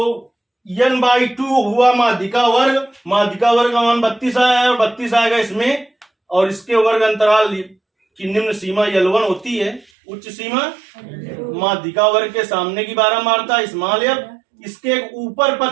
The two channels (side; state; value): left; drops out; at 9.9 s